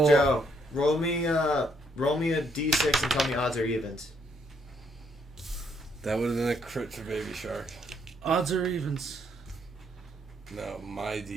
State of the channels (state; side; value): normal; both; correlation 0.72